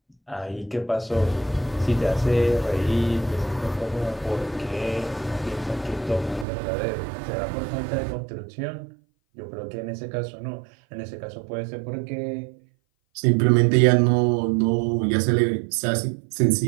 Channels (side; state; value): left; drops out; at 6.5 s